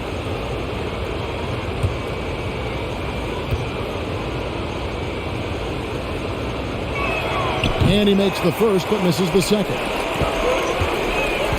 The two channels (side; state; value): both; identical; correlation 1.00